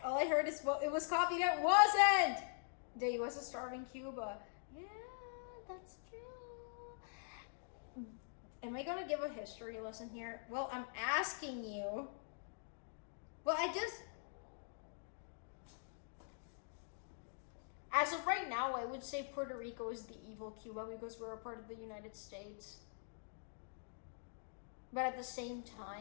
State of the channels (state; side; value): silent; right; digital silence